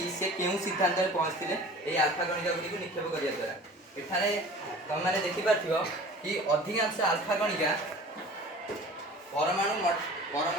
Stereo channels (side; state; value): both; normal; correlation 0.42